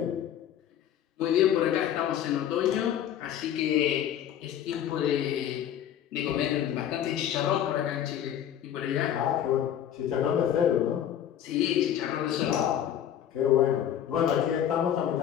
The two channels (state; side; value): quieter; right; 10.2 dB